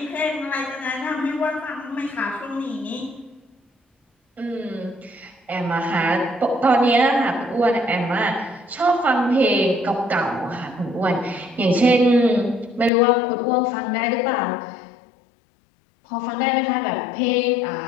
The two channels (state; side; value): drops out; right; at 12.9 s